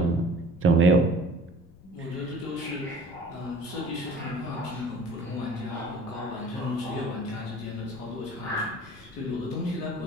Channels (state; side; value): noise; left; rumble, 23 dB below the sound